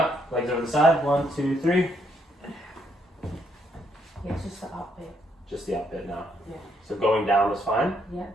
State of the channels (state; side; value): normal; both; correlation 0.73